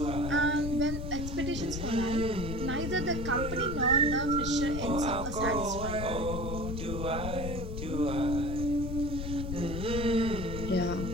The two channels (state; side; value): noise; left; rumble, 5 dB below the sound